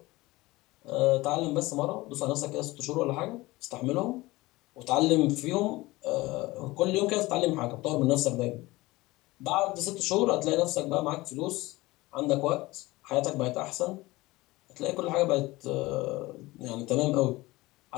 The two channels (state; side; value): quieter; right; 20.4 dB